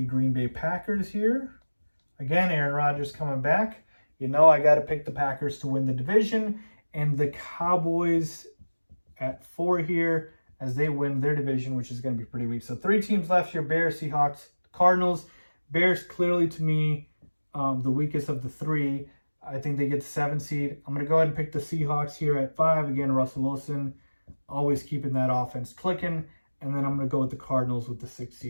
Green Bay Packers here. Again, Aaron Rodgers coming back. You know I got to pick the Packers to win the division, and the Cowboys at 4 here as they win their division, which is going to be pretty weak. So 3 teams left here: Bears, Seahawks, Cardinals. Bears clearly to me the weakest of the 3. I think they get the 7 seed. I'm going to go ahead and pick the Seahawks here at 5. Again, Russell Wilson always keeping that offense clicking. And then I'm going to go with the Cardinals with the 6th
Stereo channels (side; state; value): both; inverted; correlation -1.00